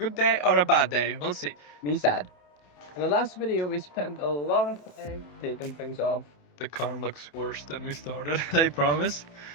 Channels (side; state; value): right; late; 27 ms